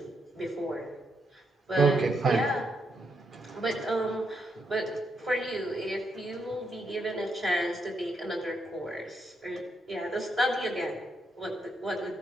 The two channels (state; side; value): normal; both; correlation 0.79